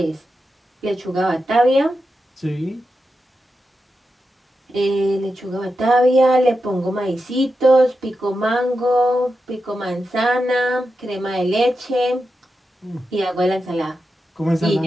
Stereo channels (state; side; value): normal; both; correlation 0.89